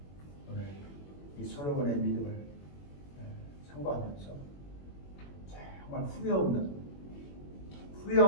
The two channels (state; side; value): late; right; 21 ms